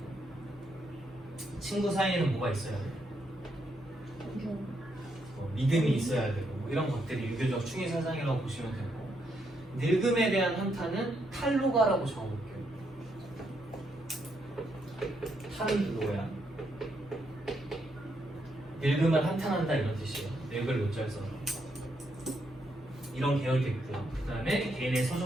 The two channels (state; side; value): normal; both; correlation 0.77